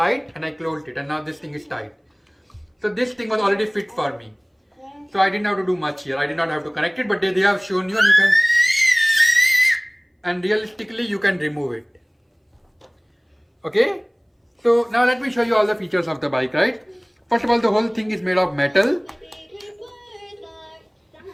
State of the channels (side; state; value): both; identical; correlation 1.00